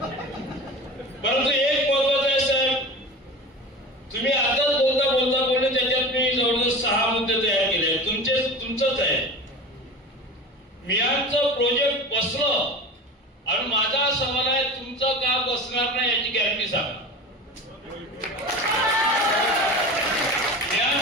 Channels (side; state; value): both; normal; correlation 0.33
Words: परंतु एक महत्वाचं आहे साहेब, तुम्ही आताच बोलले त्याच्यात मी जवळजवळ 6 मुद्दे तयार केले. तुमचंच आहे. मियांचं प्रोजेक्ट बसलं आणि माझा सवाल आहे, तुमचं का बसणार नाही याची गॅरंटी सांगा.